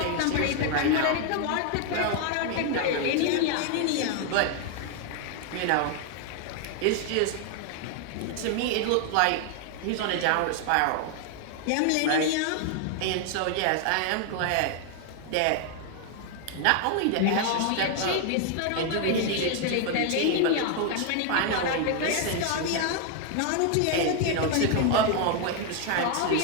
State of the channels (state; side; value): different; both; correlation 0.00